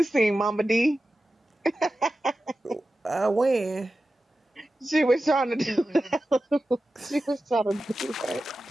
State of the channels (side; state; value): both; normal; correlation 0.93